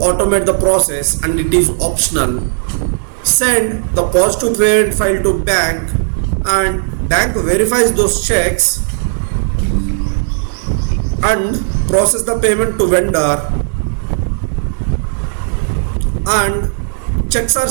the process and it is optional. Send the positive payment file to bank and bank verifies those checks and process the payment to vendor, and checks are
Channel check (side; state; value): left; silent; digital silence